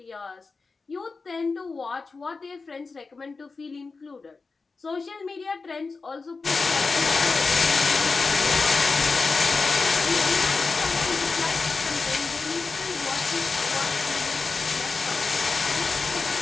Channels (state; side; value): quieter; right; 4.2 dB